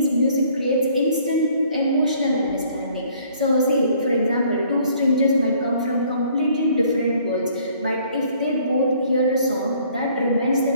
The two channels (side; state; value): both; inverted; correlation -0.60